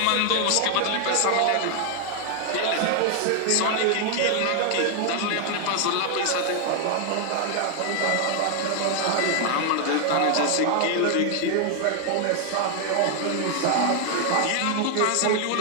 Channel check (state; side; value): different; both; correlation 0.00